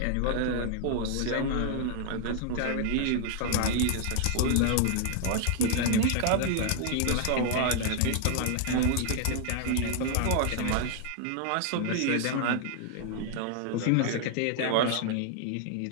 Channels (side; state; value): both; different; correlation 0.00